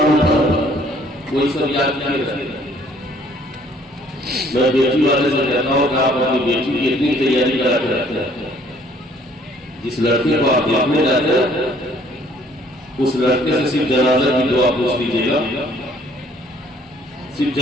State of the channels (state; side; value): normal; both; correlation 0.60